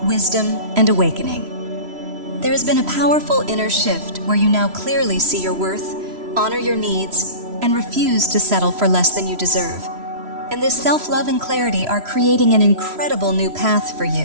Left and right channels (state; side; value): late; left; 3.0 ms